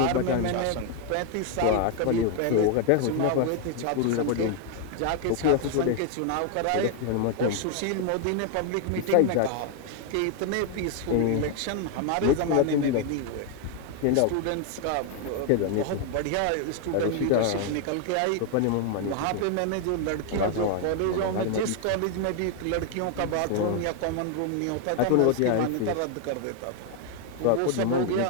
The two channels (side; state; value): both; different; correlation 0.01